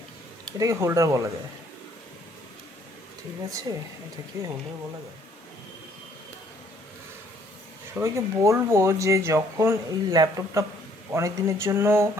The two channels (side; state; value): both; normal; correlation 0.64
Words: এটাকে হোল্ডার বলা যায়, ঠিক আছে? এটাকে হোল্ডার বলা যায়। সবাইকে বলবো যে যখন এই ল্যাপটপটা অনেক দিনের জন্য